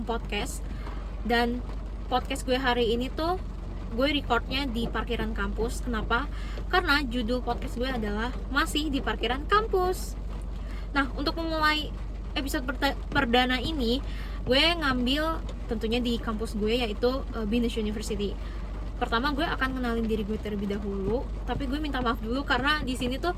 podcast. Dan podcast gue hari ini tuh gue recordnya di parkiran kampus. Kenapa? Karena judul podcast gue adalah masih di parkiran kampus. Nah, untuk memulai episode perdana ini, gue ngambil tentunya di kampus gue, yaitu Binus University. Pertama gue akan kenalin diri gue terlebih dahulu, tapi gue minta maaf dulu karena di sini tuh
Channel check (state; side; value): identical; both; correlation 1.00